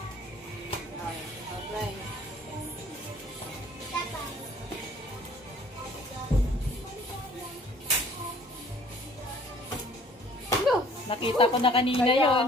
Ay, apply. Nakita ko na kanina Kaya yon.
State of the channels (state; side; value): normal; both; correlation 0.54